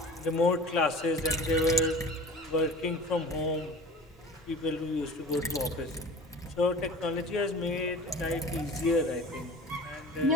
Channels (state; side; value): normal; both; correlation 0.40